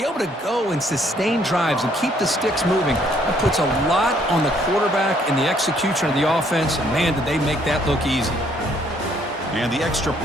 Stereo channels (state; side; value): normal; both; correlation 0.66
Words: able to go and sustain drives and keep the sticks moving, that puts a lot on the quarterback and the execution of the offense, and man, did they make that look easy. And the extra